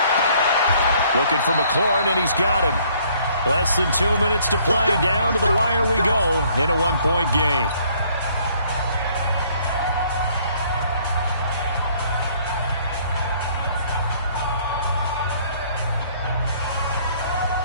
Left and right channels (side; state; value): both; inverted; correlation -0.62